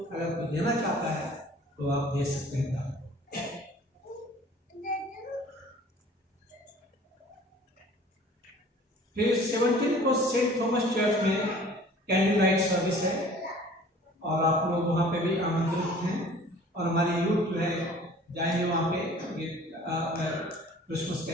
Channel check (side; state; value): both; normal; correlation 0.49